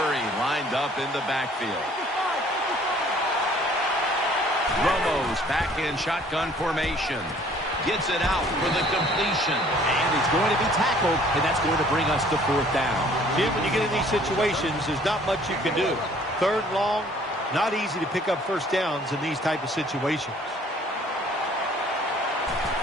lined up in the backfield. Romo's back in shotgun formation. Gets it out for the completion. And he's going to be tackled, and that's going to bring us to 4th down. Jim, when you get in these situations, there's not much you can do. 3rd and long, not easy to pick up first downs in these type of situations.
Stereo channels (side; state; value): both; normal; correlation 0.56